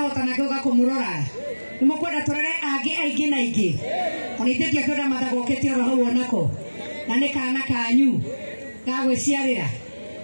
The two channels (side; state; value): both; inverted; correlation -1.00